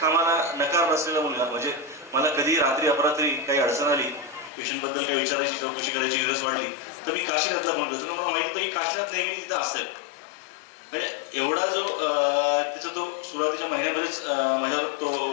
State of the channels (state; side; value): drops out; right; at 4.5 s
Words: नकार नसलेला मुलगा. म्हणजे मला कधी रात्री अपरात्री काही अडचण आली, पेशंटबद्दल काही विचारायची, चौकशी करायची गरज वाटली, तर मी काशीनाथला फोन करतो. मला माहिती होतं की काशीनाथ नेहमी तिथं असेल. म्हणजे एवढा जो त्याचा तो सुरुवातीच्या महिन्यामध्येच माझ्यावर तो